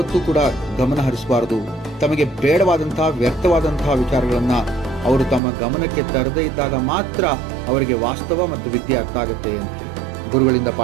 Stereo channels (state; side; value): drops out; left; at 5.4 s